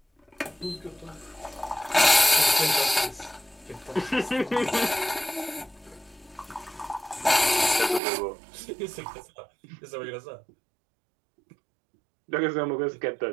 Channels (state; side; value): drops out; left; at 8.0 s